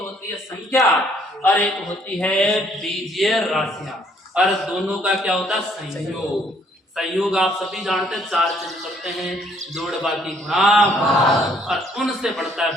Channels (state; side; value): normal; both; correlation 0.65